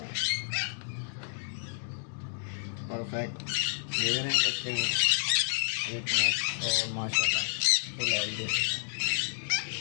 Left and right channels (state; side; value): silent; right; digital silence